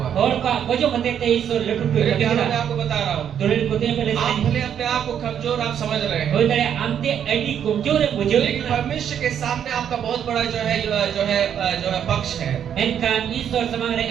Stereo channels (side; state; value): left; quieter; 9.0 dB